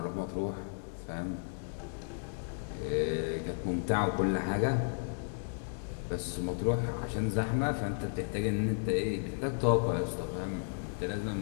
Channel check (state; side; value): silent; right; digital silence